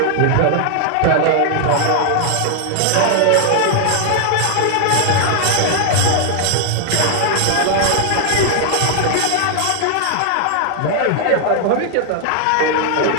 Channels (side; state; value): both; different; correlation 0.00